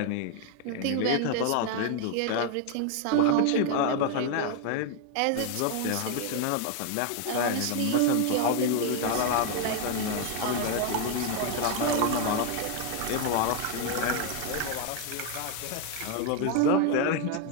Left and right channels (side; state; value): both; different; correlation 0.00